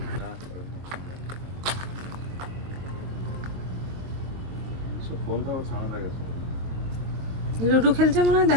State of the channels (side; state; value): left; late; 22 ms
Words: লুডো খেলছে মনে হয়,